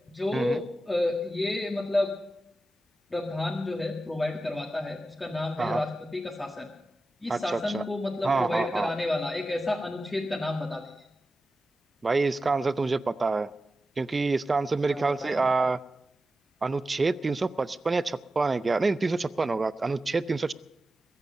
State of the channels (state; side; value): normal; both; correlation 0.93